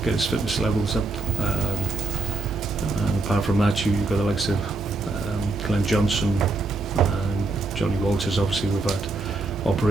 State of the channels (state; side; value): quieter; left; 3.4 dB